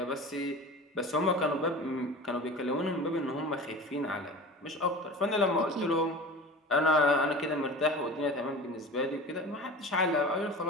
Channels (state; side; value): normal; both; correlation 0.35